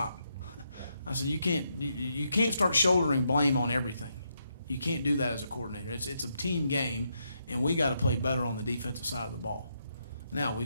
I said, you can't start shouldering blame on everything. You can't do that as a coordinator. It's a team game, and we got to play better on the defensive side of the ball. Now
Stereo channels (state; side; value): inverted; both; correlation -0.80